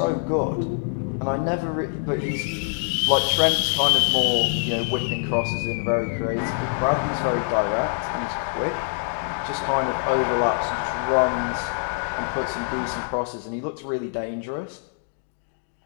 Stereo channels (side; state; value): right; silent; digital silence